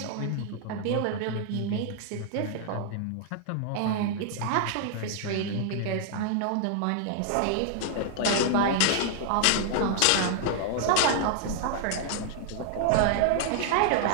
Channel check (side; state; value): both; different; correlation 0.00